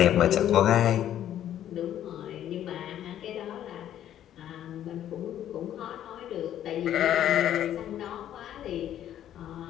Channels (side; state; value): right; quieter; 11.2 dB